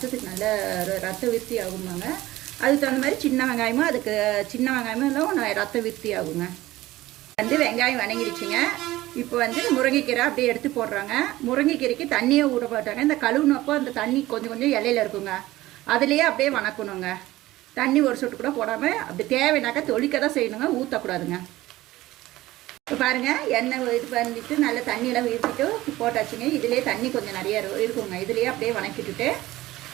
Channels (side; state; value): left; quieter; 17.0 dB